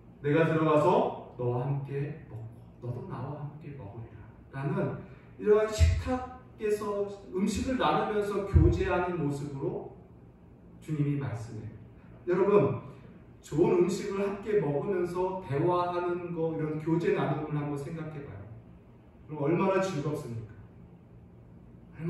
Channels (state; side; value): identical; both; correlation 1.00